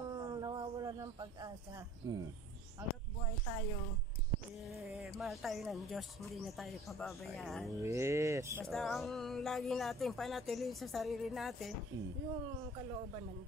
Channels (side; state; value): both; normal; correlation 0.49